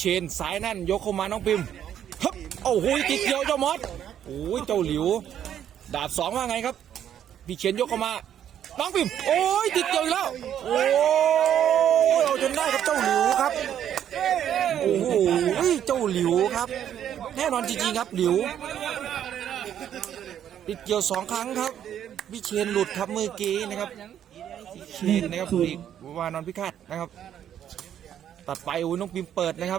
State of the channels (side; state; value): left; quieter; 10.0 dB